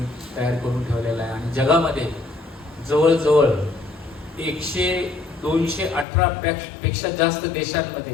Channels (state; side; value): drops out; right; at 6.1 s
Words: तयार करून ठेवलेला आहे. आणि जगामध्ये जवळजवळ 218 पेक्षा जास्त